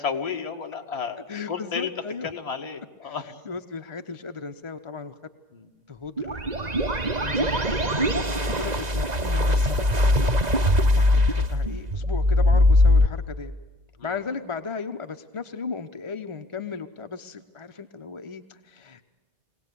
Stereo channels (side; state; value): left; late; 2.0 ms